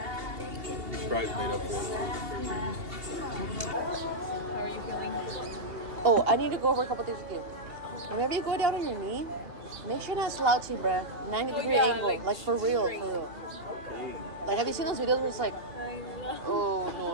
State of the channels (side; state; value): left; late; 2.8 ms